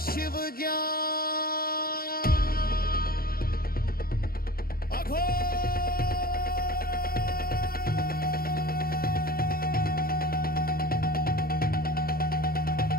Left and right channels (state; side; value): late; right; 0.43 ms